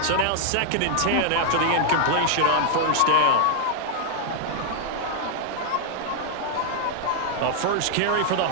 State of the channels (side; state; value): both; different; correlation 0.00